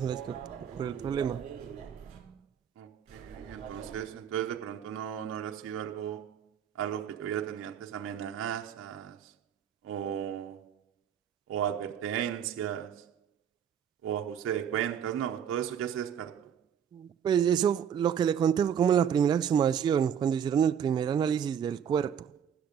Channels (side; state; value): left; quieter; 8.4 dB